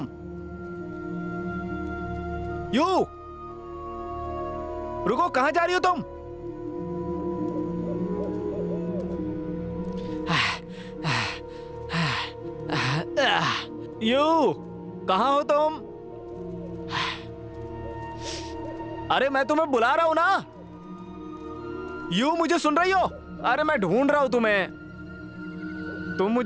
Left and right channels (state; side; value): identical; both; correlation 1.00